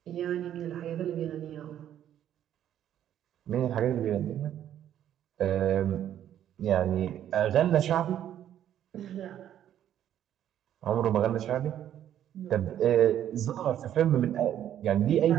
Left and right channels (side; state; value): left; quieter; 10.8 dB